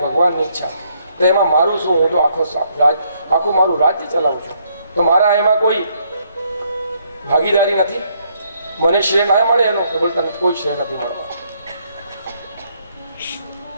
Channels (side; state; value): both; inverted; correlation -0.71